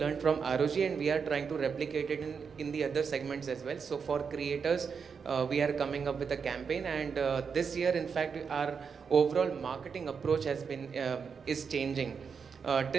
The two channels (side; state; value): left; quieter; 6.1 dB